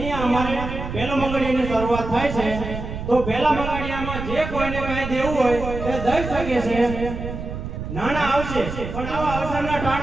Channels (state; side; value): noise; right; rumble, 7 dB below the sound